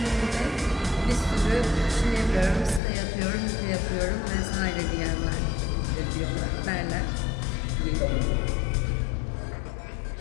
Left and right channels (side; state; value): right; drops out; at 2.8 s